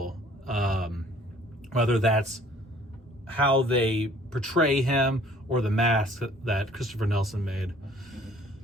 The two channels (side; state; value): both; normal; correlation 0.55